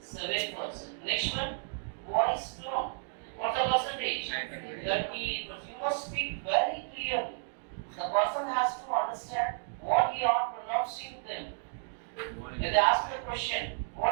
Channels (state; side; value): silent; left; digital silence